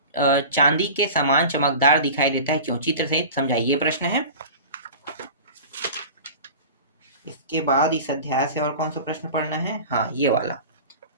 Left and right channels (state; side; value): inverted; both; correlation -0.35